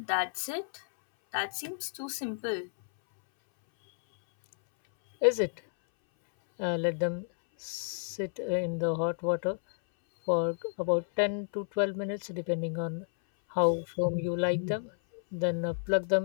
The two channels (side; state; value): right; silent; 57 dB below the other